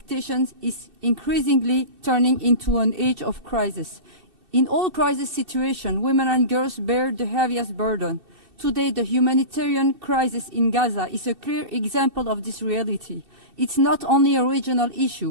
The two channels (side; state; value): left; late; 2.7 ms